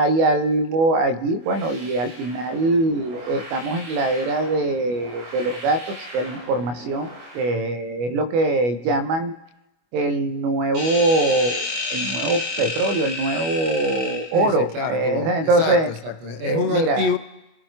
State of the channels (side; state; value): left; late; 25 ms